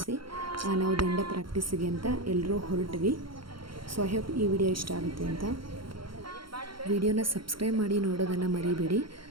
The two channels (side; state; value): left; late; 0.73 ms